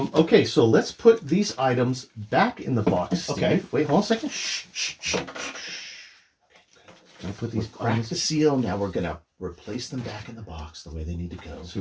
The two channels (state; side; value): identical; both; correlation 1.00